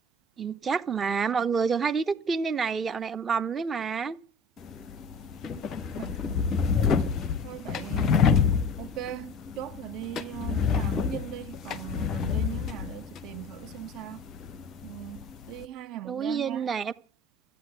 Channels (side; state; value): both; normal; correlation 0.40